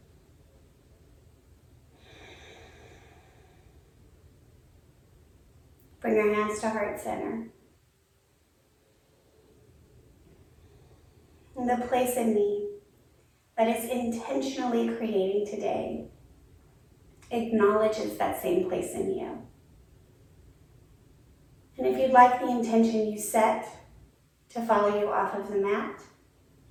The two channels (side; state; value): both; identical; correlation 1.00